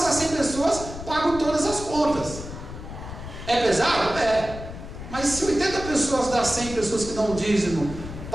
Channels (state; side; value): noise; left; rumble, 11 dB below the sound